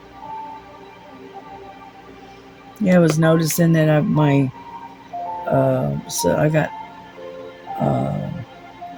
Yeah, I was noticing that so I got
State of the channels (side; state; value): both; identical; correlation 1.00